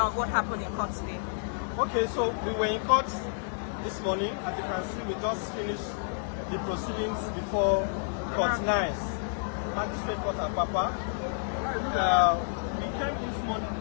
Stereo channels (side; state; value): right; silent; digital silence